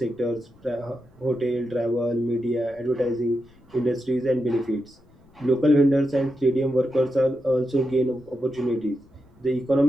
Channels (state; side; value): noise; left; rumble, 28 dB below the sound